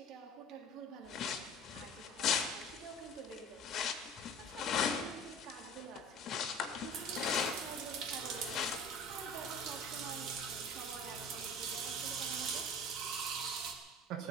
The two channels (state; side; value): normal; both; correlation 0.42